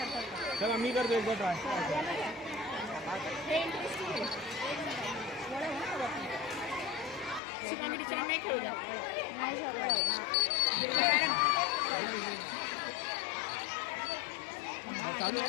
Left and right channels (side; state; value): right; drops out; at 7.4 s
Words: चला मी करतो एकदा ट्राय. चालू